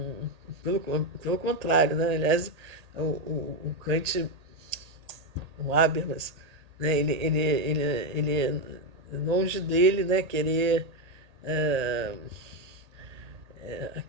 pelo contrário, né? Aliás, o Kant, o Habermas, né? Ele longe dele, né, querer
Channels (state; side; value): late; left; 1.8 ms